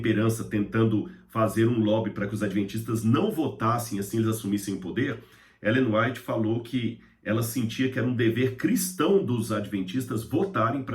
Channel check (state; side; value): identical; both; correlation 1.00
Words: tentando fazer um lobby para que os adventistas não votassem, assim eles assumissem o poder, Ellen White falou que ela sentia que era um dever cristão dos adventistas votarem